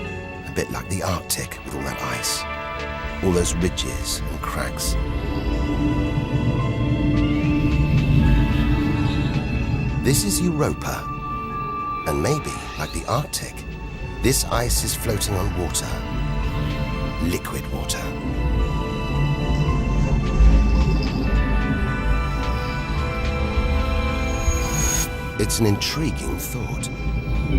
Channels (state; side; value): identical; both; correlation 1.00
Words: A bit like the Arctic with all that ice, all those ridges and cracks. This is Europa, and maybe, like the Arctic, this ice is floating on water, liquid water. It's an intriguing thought.